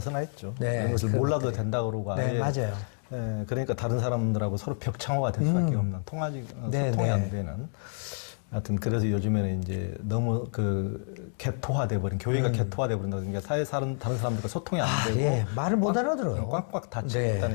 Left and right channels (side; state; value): right; silent; 59 dB below the other